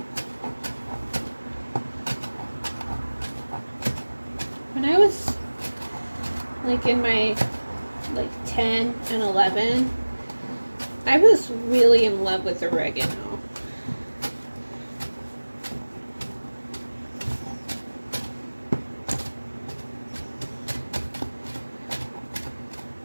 When I was like in my like 10 and 11, I was really in love with oregano.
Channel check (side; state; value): both; inverted; correlation -1.00